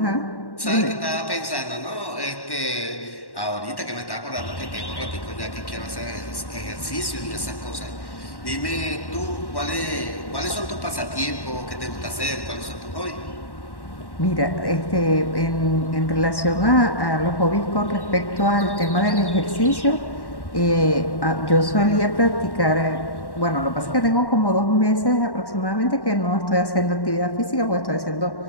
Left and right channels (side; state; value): right; late; 1.1 ms